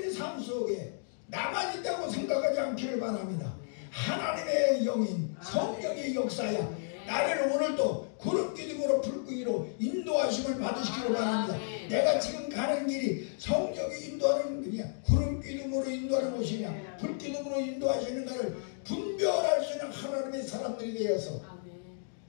삶 속에 나만 있다고 생각하지 않기를 바랍니다. 하나님의 영인 성령의 역사야 나를 오늘도 구름기둥으로 불기둥으로 인도하심을 받으시기를 바랍니다. 내가 지금 가는 길이 성령이 인도하는 길이냐, 구름기둥으로 인도하는 곳이냐, 불기둥으로 인도하시는가를 분별할 수 있는 하나님의 사람들이 되어서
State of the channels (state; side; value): silent; right; digital silence